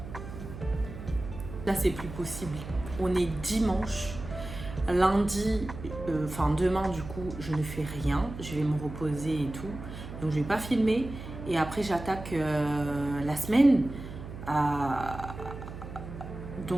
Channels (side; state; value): right; noise; hum, 11 dB below the sound